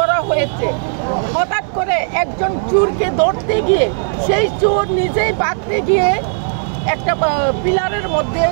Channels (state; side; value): silent; left; 66 dB below the other